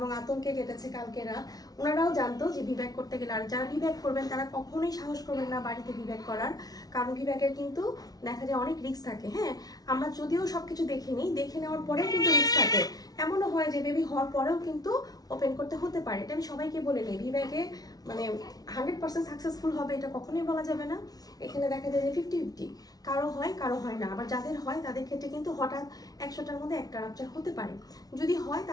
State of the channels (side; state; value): right; late; 0.19 ms